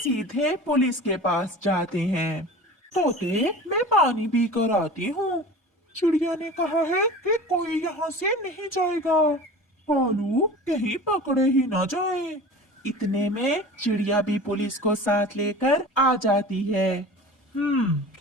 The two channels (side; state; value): both; normal; correlation 0.37